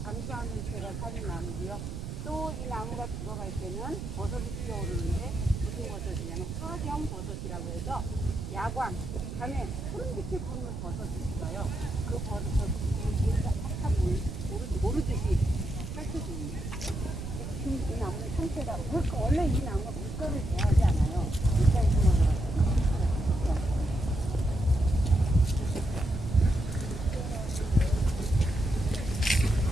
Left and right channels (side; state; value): right; noise; rumble, 7 dB below the sound